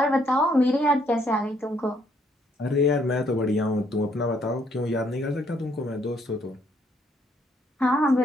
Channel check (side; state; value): both; normal; correlation 0.69